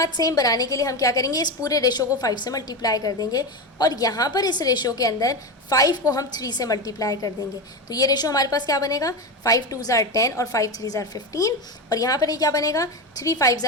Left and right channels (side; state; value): both; normal; correlation 0.18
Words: सेम बनाने के लिए हम क्या करेंगे, इस पूरे रेशो को 5 से मल्टीप्लाई कर देंगे और यहाँ पर इस रेशो के अंदर 5 को हम 3 से मल्टीप्लाई कर देंगे। तो ये रेशो हमारे पास क्या बनेगा, 5 2s are 10 और 5 3s are 15, और यहाँ पर ये क्या बनेगा, 3 5s